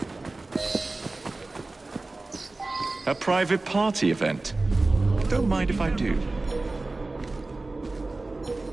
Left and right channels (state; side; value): quieter; left; 3.2 dB